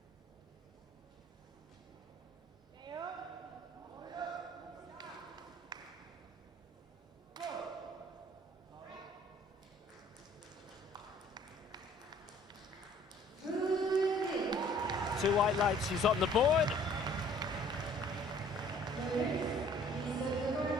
Two white lights, she's on the board.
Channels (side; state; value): both; normal; correlation 0.55